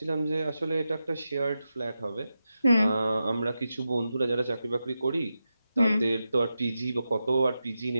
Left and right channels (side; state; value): both; inverted; correlation -0.90